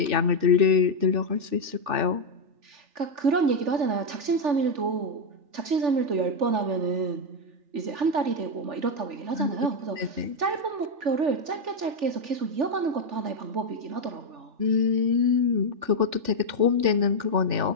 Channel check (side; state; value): left; late; 3.4 ms